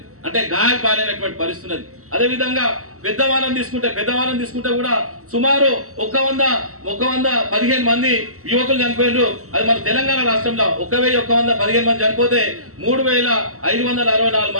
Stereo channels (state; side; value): late; left; 0.64 ms